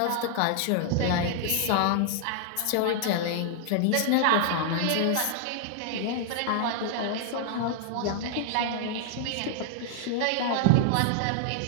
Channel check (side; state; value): both; different; correlation 0.00